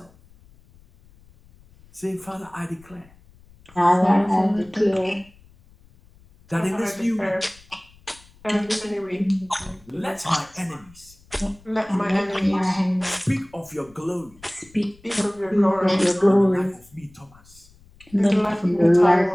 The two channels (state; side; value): noise; left; rumble, 27 dB below the sound